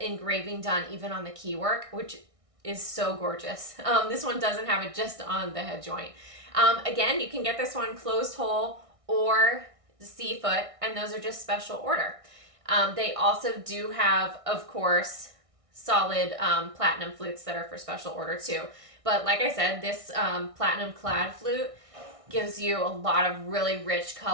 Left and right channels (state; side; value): late; left; 1.6 ms